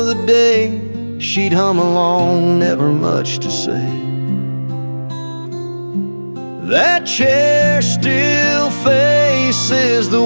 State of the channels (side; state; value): both; inverted; correlation -1.00